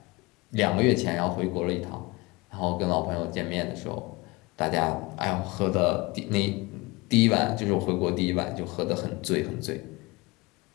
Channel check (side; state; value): right; quieter; 23.9 dB